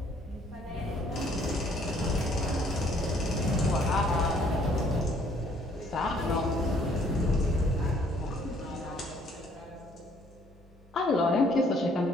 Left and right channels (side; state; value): both; normal; correlation 0.62